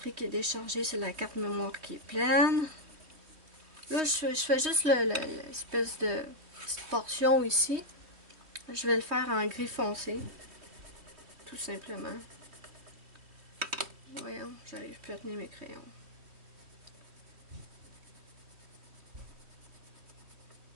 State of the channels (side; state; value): left; late; 3.1 ms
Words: qui est déchargée, c'est la carte mémoire qui est pleine. Là, je fais juste l'espèce de petite portion ici. Je vais le faire en gris foncé, tout simplement. Voyons, j'arrive plus à tenir mes crayons.